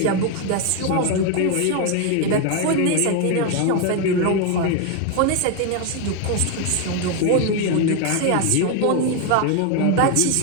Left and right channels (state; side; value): different; both; correlation 0.01